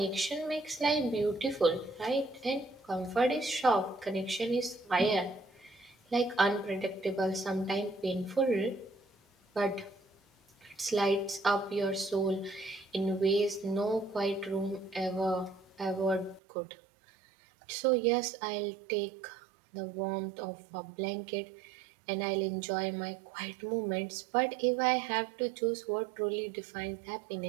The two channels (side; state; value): left; drops out; at 16.4 s